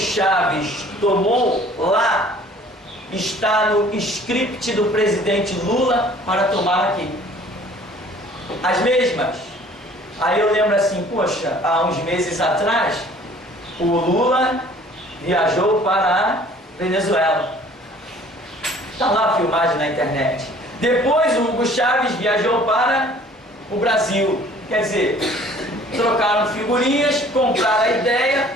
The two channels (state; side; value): normal; both; correlation 0.53